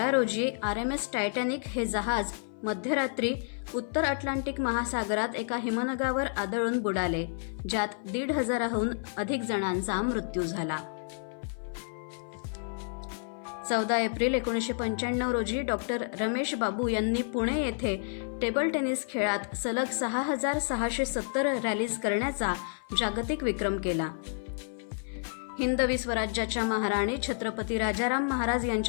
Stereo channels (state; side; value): silent; right; 56 dB below the other